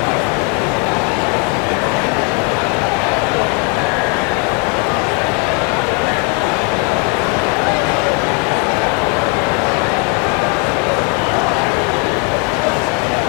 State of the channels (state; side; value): quieter; right; 35.7 dB